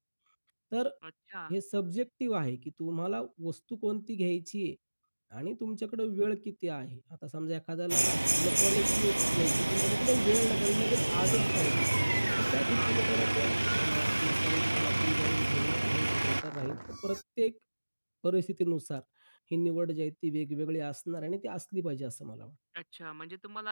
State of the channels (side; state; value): both; inverted; correlation -1.00